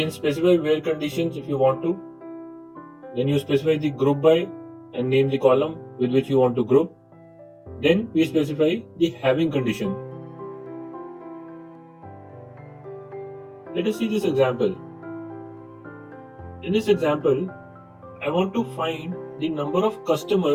specify where conditions if you want to. Then you specify the group by and name the column with which you want to group. Then we specify the having condition. Let us see this example. In this example, I want to find the number of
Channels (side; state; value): both; identical; correlation 1.00